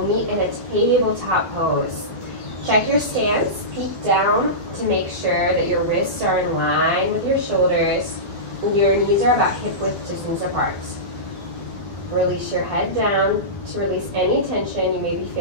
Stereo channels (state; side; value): late; left; 11 ms